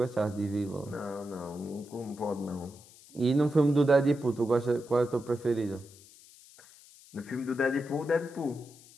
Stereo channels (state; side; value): noise; left; hiss, 23 dB below the sound